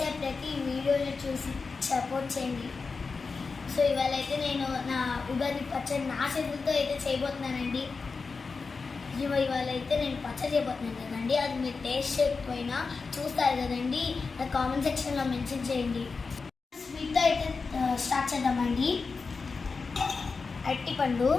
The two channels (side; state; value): right; quieter; 4.6 dB